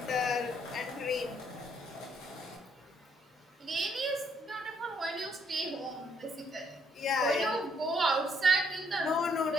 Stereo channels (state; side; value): normal; both; correlation 0.69